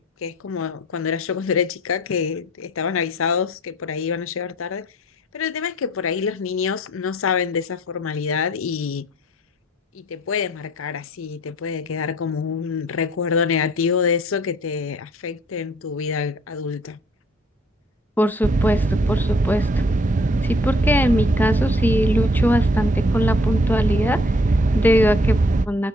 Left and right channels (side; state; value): both; normal; correlation 0.58